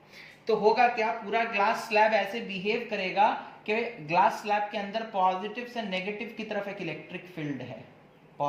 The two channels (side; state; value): both; identical; correlation 1.00